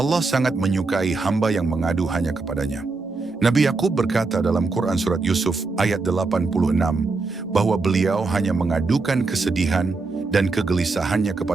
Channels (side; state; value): left; quieter; 3.8 dB